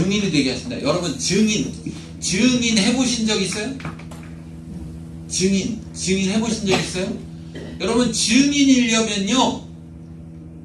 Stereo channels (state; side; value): identical; both; correlation 1.00